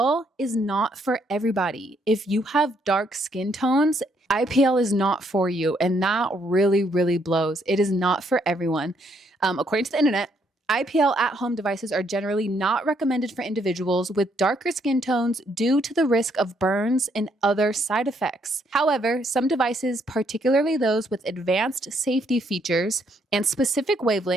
is not for everybody. If you have dark skin tones, IPL is not for you, and that really, really blows. It is not for everyone. According to the internet, IPL at-home devices are generally not recommended for individuals with darker skin tones due to the risk of burns and other side effects. However, some devices, particularly those with advanced safety features and specific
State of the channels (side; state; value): both; normal; correlation 0.71